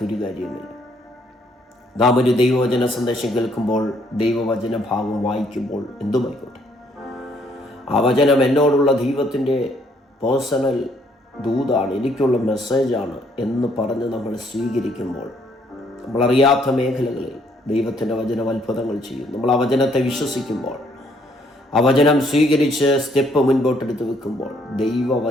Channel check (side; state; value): both; normal; correlation 0.67